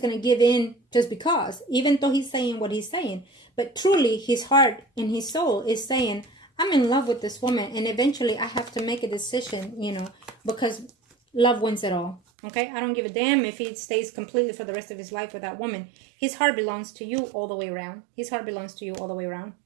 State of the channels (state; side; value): drops out; left; at 12.2 s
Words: going to give in just because, even though he's saying what he's saying. But truly, his heart and his soul is saying, I'm in love with this woman. And eventually, I have to make a decision, you know, because love wins it all. Okay? I don't give a damn if he stays completely for the rest of his life with that woman. His heart belongs to you all the way around. His heart belongs to you all the way around.